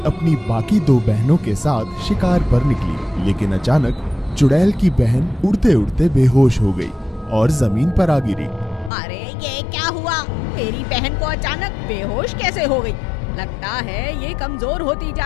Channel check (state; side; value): drops out; right; at 8.9 s